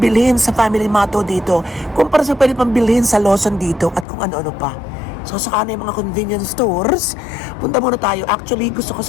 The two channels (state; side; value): drops out; right; at 4.0 s